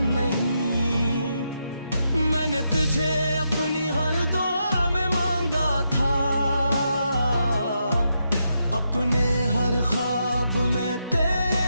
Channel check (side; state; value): both; inverted; correlation -0.82